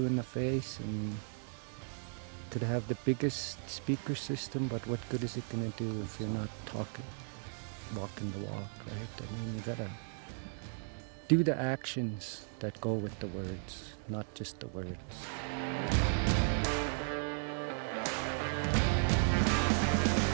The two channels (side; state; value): left; silent; 54 dB below the other